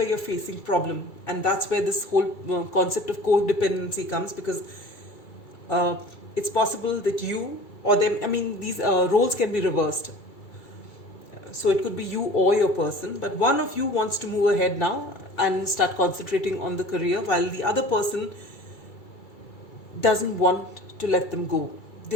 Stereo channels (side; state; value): right; late; 2.3 ms